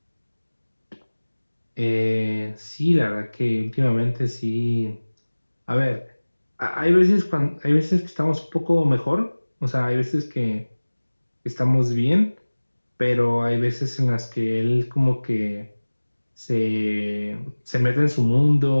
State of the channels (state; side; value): inverted; both; correlation -1.00